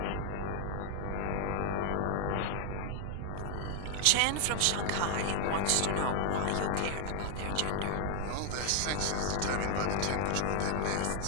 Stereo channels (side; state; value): both; different; correlation 0.00